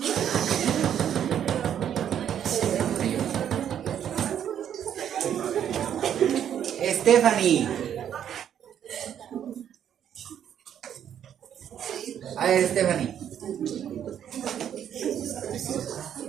Stephanie. A ver, Stephanie.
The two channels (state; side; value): quieter; left; 9.5 dB